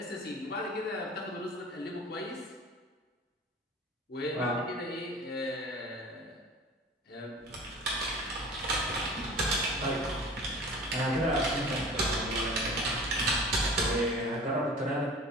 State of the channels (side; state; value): both; normal; correlation 0.41